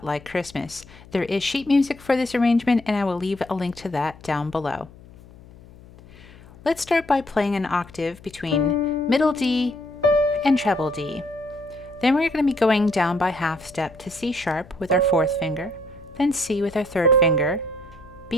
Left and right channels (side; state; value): left; noise; hum, 22 dB below the sound